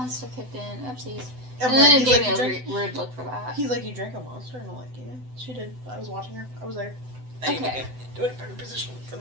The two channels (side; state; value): left; late; 7.9 ms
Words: kicked in. Oopsies. And then it he's gave like, me a weird look for that. He's like, you drank a monster? And I'm like, yeah, she did. I was watching her. I was there. I need to Okay. get to a better position for